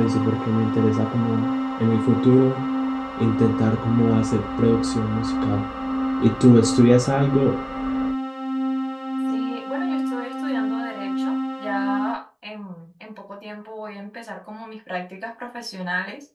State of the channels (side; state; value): both; identical; correlation 1.00